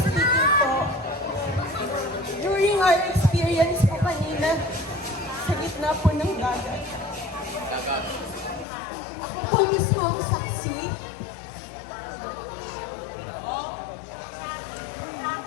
speaking po, during our experience po kanina, sa gitna po ng dagat, ako po mismo ang saksi.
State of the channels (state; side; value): drops out; right; at 8.7 s